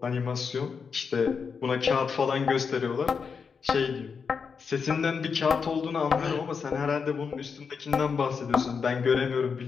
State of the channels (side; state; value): right; quieter; 5.8 dB